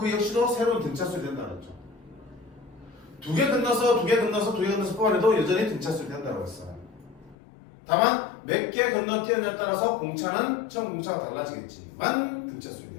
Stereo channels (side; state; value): right; drops out; at 7.4 s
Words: 역시도 새로운 등차수열이 된다고 했죠. 두 개 건너서 뽑아내도 여전히 등차수열이 된다고 했어. 다만 몇 개 건너뛰느냐에 따라서 공차는 처음 공차가 달라지겠지만